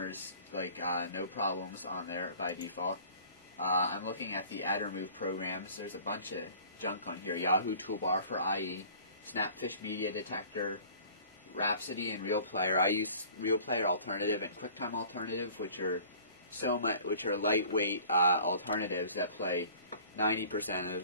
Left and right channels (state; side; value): inverted; both; correlation -0.49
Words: like no problems on there by default. I'm looking at the add remove programs. There's a bunch of junk on here. Yahoo Toolbar for IE, Snapfish Media Detector, Rhapsody and Real Player. I use Real Player Alternative and QuickTime Alternative, which are lightweight alternatives that play 90%